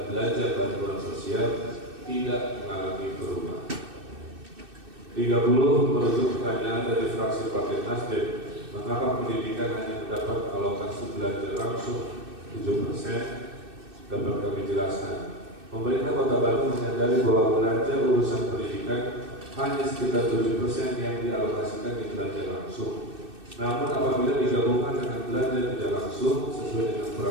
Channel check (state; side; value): late; left; 2.6 ms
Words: belanja bantuan sosial tidak mengalami perubahan. 30. Merujuk pertanyaan dari fraksi Partai Nasdem, mengapa pendidikan hanya mendapat alokasi belanja langsung 7%? Dapat kami jelaskan. Pemerintah Kota Bandung menyadari bahwa belanja urusan pendidikan hanya sekitar 7% yang dialokasikan di belanja langsung. Namun apabila digabungkan dengan belanja tidak langsung sesuai dengan